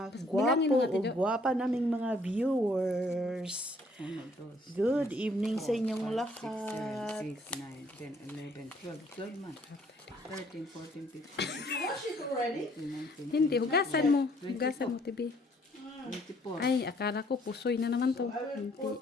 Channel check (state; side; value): normal; both; correlation 0.63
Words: gwapo o gwapa naming mga viewers. Good evening sa inyong lahat. 6, 9, 10, 11, 12 months. 13, 14, 15, 16, 17, Hindi, hugasan mo. Hugasan mo, Tibi. 24. Ay, akala ko pusoy na naman to.